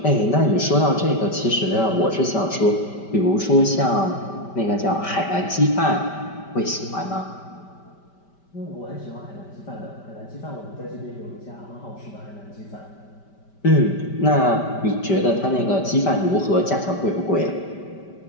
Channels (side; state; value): right; late; 5.1 ms